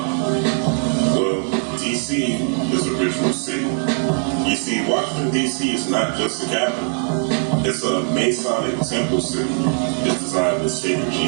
Well, D.C. is a ritual city. You see, Washington, D.C. is not just a capital. It's a Masonic temple city. It's designed with sacred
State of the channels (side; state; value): left; quieter; 38.8 dB